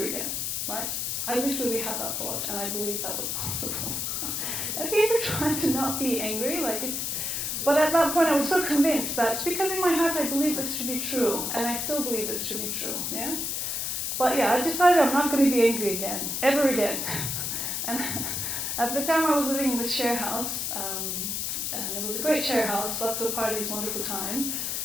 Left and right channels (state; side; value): noise; left; hiss, 1 dB below the sound